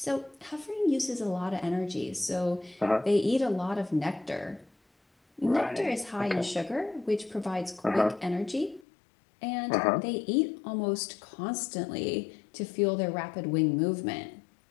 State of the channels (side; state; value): right; drops out; at 8.8 s